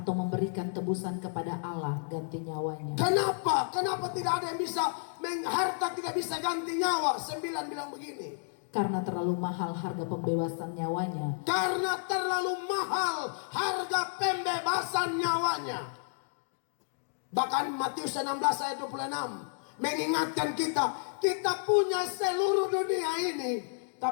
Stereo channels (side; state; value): right; silent; digital silence